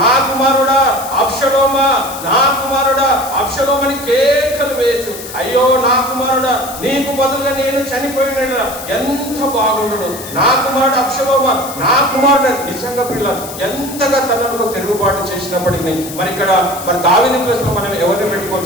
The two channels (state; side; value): noise; left; hiss, 12 dB below the sound